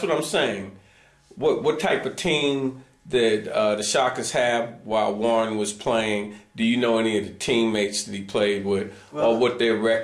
what I'm saying. What type of team did the Shockers have while Warren was playing? Do you know any of the teammates that he played with, or what their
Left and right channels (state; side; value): identical; both; correlation 1.00